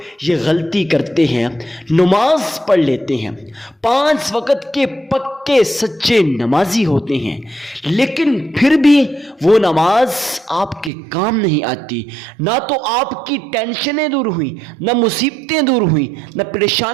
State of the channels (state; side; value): drops out; left; at 10.9 s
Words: یہ غلطی کرتے ہیں، نماز پڑھ لیتے ہیں، 5 وقت کے پکے سچے نمازی ہوتے ہیں، لیکن پھر بھی وہ نماز آپ کے کام نہیں آتی۔ نہ تو آپ کی ٹینشنیں دور ہوئیں، نہ مصیبتیں دور ہوئیں، نہ